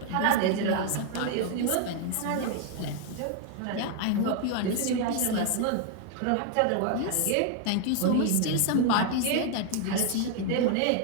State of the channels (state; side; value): different; both; correlation 0.00